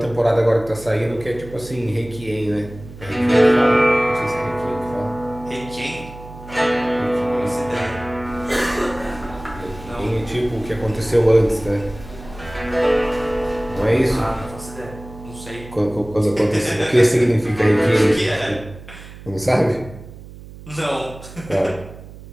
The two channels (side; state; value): right; noise; hum, 16 dB below the sound